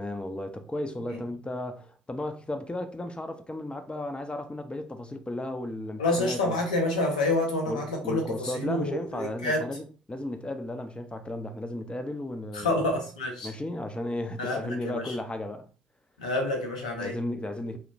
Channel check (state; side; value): normal; both; correlation 0.44